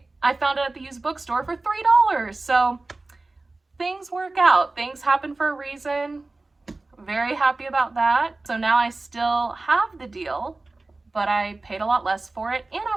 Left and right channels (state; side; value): quieter; left; 3.2 dB